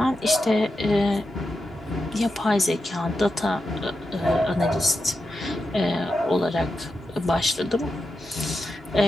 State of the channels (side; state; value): both; normal; correlation 0.88